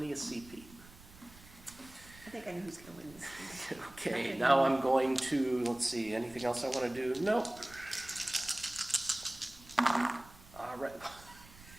of CP. I think I know who's going to win this game. Okay, now I'm going to, let's see, anything else I want to do? Nope. All right.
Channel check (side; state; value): right; noise; rumble, 21 dB below the sound